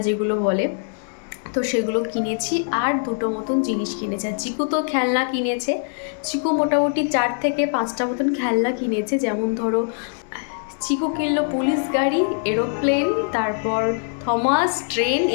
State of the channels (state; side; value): silent; right; digital silence